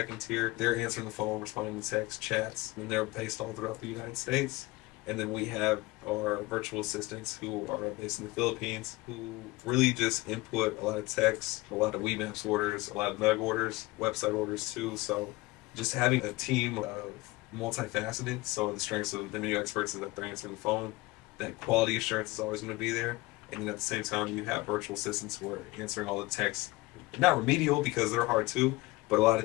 tier. They're answering the phone, responding to text, chats, and they're based all throughout the United States. And then we have our virtual assistants who are based in the Philippines, who really just input a lot of text, a lot of WeMaps orders, a lot of Nug orders, website orders too. So just having a team of multifaceted, so the strengths of the menu experts is that they're answering the phone, that quality assurance is always going to be there, and then at the same time you have virtual assistants who are answering all the texts, not remedial because they're hard too, but a lot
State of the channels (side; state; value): right; quieter; 21.6 dB